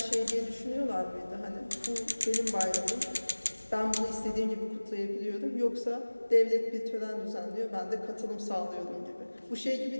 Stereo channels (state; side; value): inverted; both; correlation -1.00